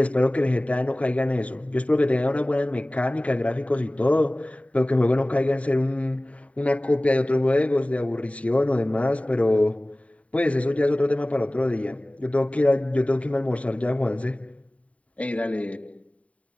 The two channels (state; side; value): late; right; 0.066 ms